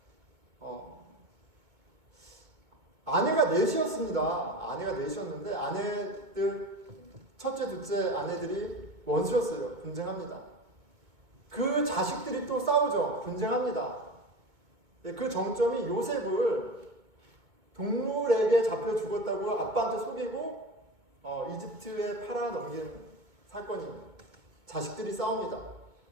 아내가 넷이었습니다. 아내가 넷이었는데 아내들, 첫째, 둘째 아내들이 원수였어요. 분쟁합니다. 그 자식들이 또 싸우죠. 분쟁합니다. 그 정점이 요셉을 동물에게 잡혀 죽었다고 아빠한테 속이고 이집트에 팔아넘긴 사건입니다. 자식들이 싸웁니다.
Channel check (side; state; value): left; late; 2.2 ms